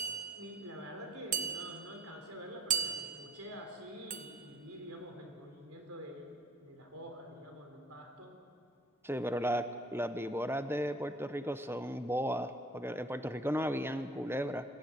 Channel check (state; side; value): normal; both; correlation 0.57